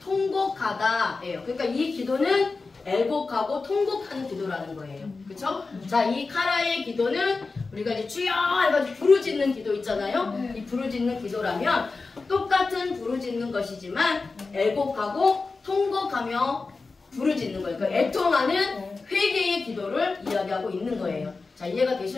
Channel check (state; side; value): quieter; right; 4.0 dB